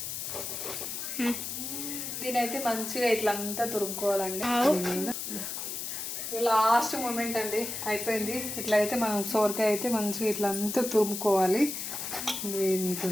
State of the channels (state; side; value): noise; left; hiss, 5 dB below the sound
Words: దీనైతే మంచిగా ఇట్లా అంతా తురుముకోవాలండి. లాస్ట్ మూమెంట్ అండి, అయిపోయింది. ఇట్లా అయితే మనం సోరకాయ అయితే మంచిగా ఇట్లా అంతా తురుముకోవాలి.